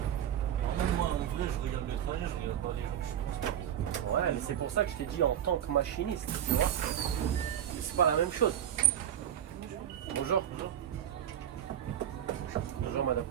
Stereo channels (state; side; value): quieter; left; 10.3 dB